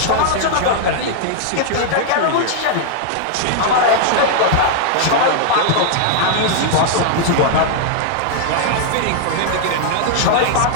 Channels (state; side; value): different; both; correlation -0.01